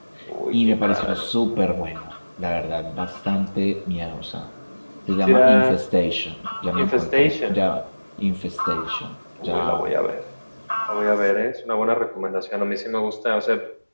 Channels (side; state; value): both; inverted; correlation -1.00